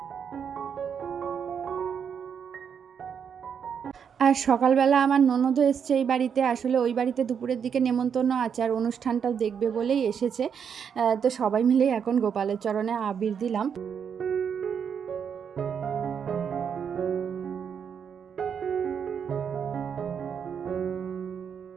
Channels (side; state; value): left; quieter; 7.3 dB